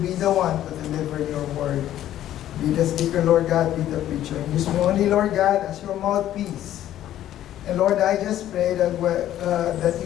be the one to deliver your word. Be the speaker, Lord God, be the preacher. And use me only, Lord God, as your mouthpiece. And Lord, I just pray that that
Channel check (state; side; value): quieter; right; 12.3 dB